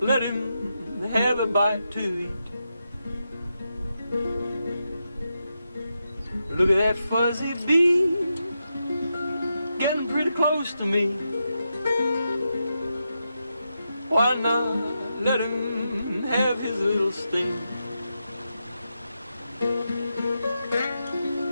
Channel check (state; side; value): inverted; both; correlation -0.86